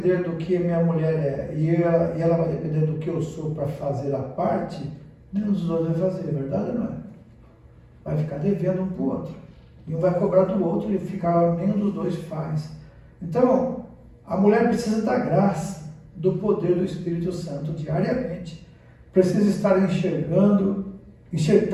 do que minha mulher é e ela vai depender do que eu sou para fazer a parte, nenhum dos dois vai fazer, verdade ou não é? Vai ficar devendo um para o outro. E um vai cobrar do outro e nenhum dos dois faz. Então, a mulher precisa da graça, do poder do Espírito Santo diariamente. Precisa estar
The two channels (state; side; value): identical; both; correlation 1.00